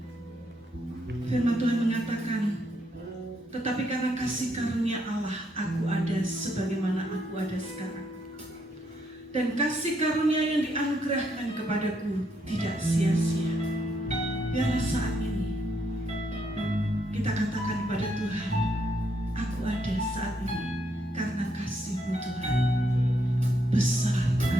Firman Tuhan mengatakan, tetapi karena kasih karunia Allah, aku ada sebagaimana aku ada sekarang. Dan kasih karunia yang dianugerahkan kepadaku tidak sia-sia. Biarlah saat ini kita katakan kepada Tuhan, aku ada saat ini karena kasih-Mu Tuhan. Besar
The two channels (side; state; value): both; normal; correlation 0.75